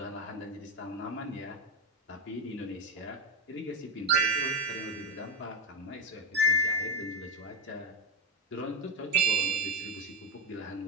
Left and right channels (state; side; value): normal; both; correlation 0.11